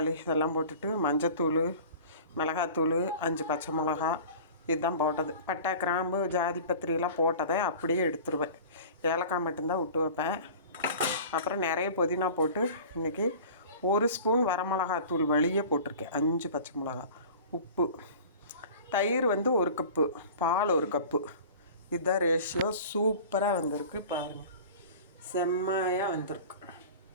இதெல்லாம் போட்டுட்டு மஞ்சத்தூள், மிளகாத்தூள், 5 பச்சை மிளகா இதுதான் போட்டது. பட்டை, கிராம்பு, ஜாதி பத்திரியெல்லாம் போட்டதை அப்படியே எடுத்துருவேன். ஏலக்காய் மட்டும்தான் விட்டு வைப்பேன். அப்புறம் நிறைய புதினா போட்டு இன்றைக்கி 1 ஸ்பூன் வரமிளகாத்தூள் வழியே போட்டிருக்கேன். 5 பச்சை மிளகா, உப்பு, தயிர் 1 கப்பு, பால் 1 கப்பு. இதுதான் ரேஷியோ. சூப்பராக வந்திருக்கு பாருங்கள், செம்மையாக வந்திருக்கு.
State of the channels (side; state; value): both; inverted; correlation -0.40